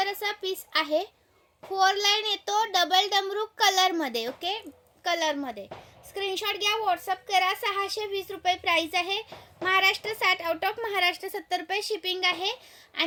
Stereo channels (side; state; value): both; identical; correlation 1.00